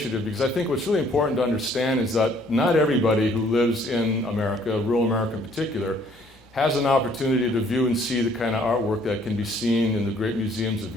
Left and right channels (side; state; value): both; normal; correlation 0.62